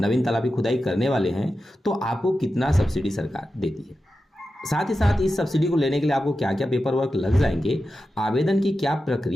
तालाब की खुदाई करने वाले हैं, तो आपको कितना सब्सिडी सरकार देती है। साथ ही साथ इस सब्सिडी को लेने के लिए आपको क्या क्या पेपर वर्क लग जाएंगे, आवेदन की क्या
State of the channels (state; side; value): normal; both; correlation 0.91